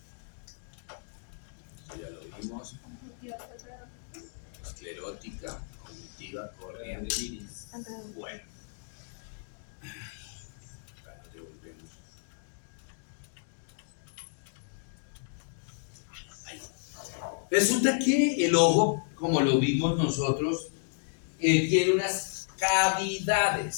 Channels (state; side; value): silent; right; digital silence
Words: Ya lo vimos. Esclerótica, conjuntiva, córnea del iris. Bueno. Resulta que el ojo, como lo vimos nosotros, tiene unas